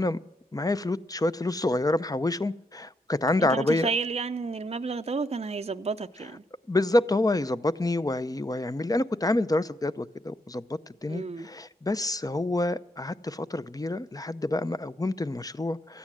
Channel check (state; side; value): normal; both; correlation 0.78